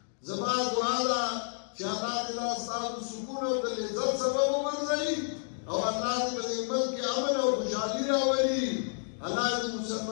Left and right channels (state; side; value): silent; right; digital silence